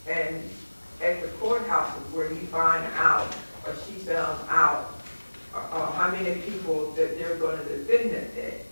and at the courthouse is where he finds out, or she found out, how many people that they're going to defend that day.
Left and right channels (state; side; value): inverted; both; correlation -1.00